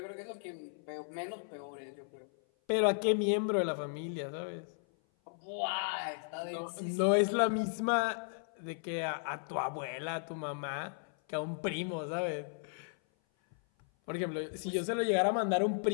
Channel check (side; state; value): right; silent; 54 dB below the other